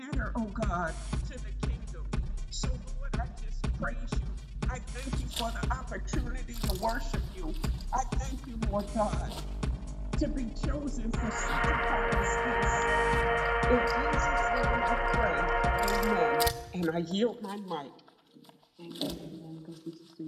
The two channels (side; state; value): both; identical; correlation 1.00